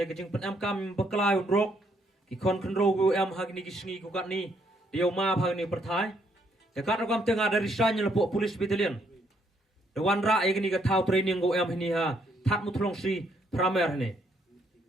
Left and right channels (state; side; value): normal; both; correlation 0.71